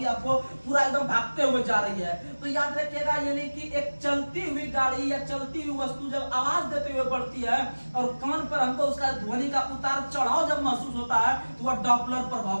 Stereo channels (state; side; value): inverted; both; correlation -1.00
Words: आपको पूरा एकदम भागते हुए जा रही है। तो याद रखिएगा, यानी कि एक चलती हुई गाड़ी या चलती हुई वस्तु जब आवाज देते हुए बढ़ती है और कान पर हमको उसका ध्वनि का उतार चढ़ाव जब महसूस होता है तो वह डॉपलर प्रभाव